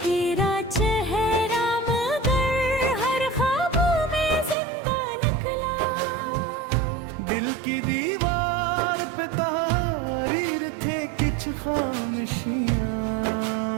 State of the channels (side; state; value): left; drops out; at 4.5 s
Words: तेरा चेहरा मगर हर ख्वाबों में जिंदा निकला। दिल की दीवार पे तहरीर थे कुछ खामोशियाँ,